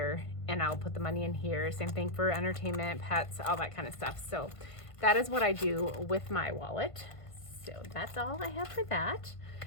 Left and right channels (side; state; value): right; late; 1.5 ms